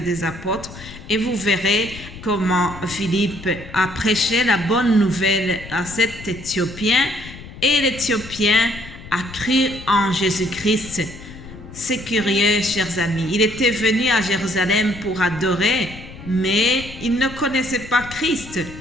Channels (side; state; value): left; noise; rumble, 15 dB below the sound